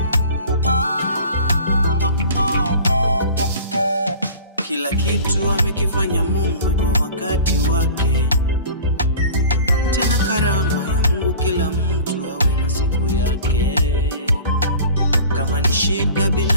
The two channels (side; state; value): both; inverted; correlation -0.41